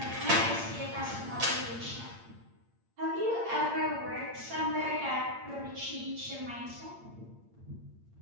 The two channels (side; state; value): left; late; 8.7 ms